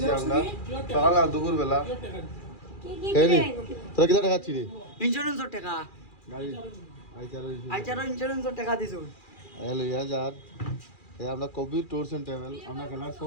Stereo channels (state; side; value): late; right; 2.4 ms